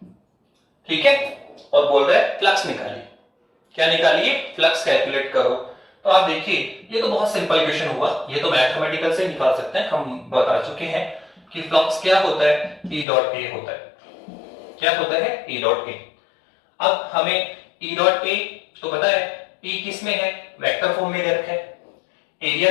ठीक है, और बोल रहा है फ्लक्स निकालिए। क्या निकालिए? फ्लक्स कैलकुलेट करो। तो आप देखिए ये तो बहुत सिंपल क्वेश्चन हुआ, ये तो मैथमेटिकल से निकाल सकते हैं, हम बता चुके हैं कि फ्लक्स क्या होता है, ई डॉट ए होता है। क्या होता है? E dot A. अब हमें ई डॉट ए तो पता है, ई किस में है, वेक्टर फॉर्म में दे रखा है, एरिया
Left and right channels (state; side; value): drops out; right; at 13.1 s